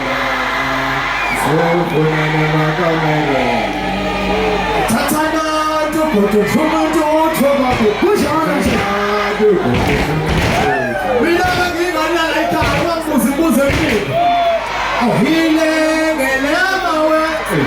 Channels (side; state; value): both; identical; correlation 1.00